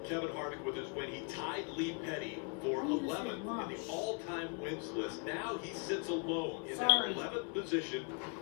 Kevin Harvick with his win, he tied Lee Petty for 11th in the all-time wins list. Now he sits alone in that 11th position.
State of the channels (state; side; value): quieter; right; 36.9 dB